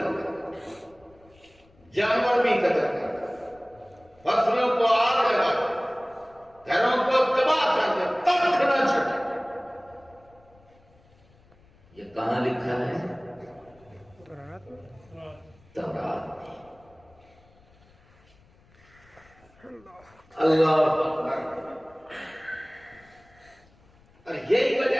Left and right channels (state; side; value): noise; left; rumble, 29 dB below the sound